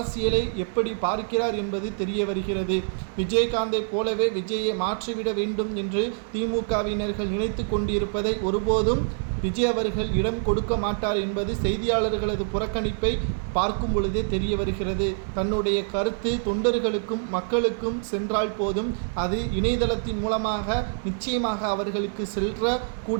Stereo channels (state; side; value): silent; left; digital silence